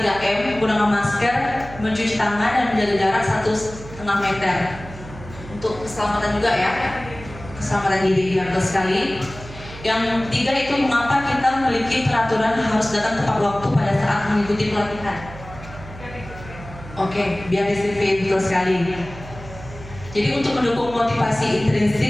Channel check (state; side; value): noise; right; hum, 15 dB below the sound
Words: menggunakan masker, mencuci tangan dan menjaga jarak 1,5 meter. Untuk keselamatan juga ya. Keselamatan diri ya, betul sekali. Yang ketiga itu mengapa kita memiliki peraturan harus datang tepat waktu pada saat mengikuti pelatihan. Oke, biar disiplin, betul sekali. Jadi untuk mendukung motivasi